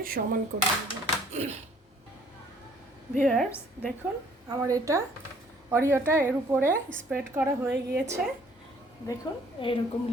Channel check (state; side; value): normal; both; correlation 0.59